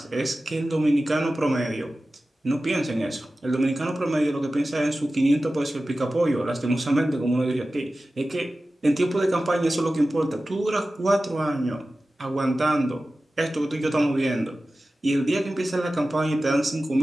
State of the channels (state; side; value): normal; both; correlation 0.95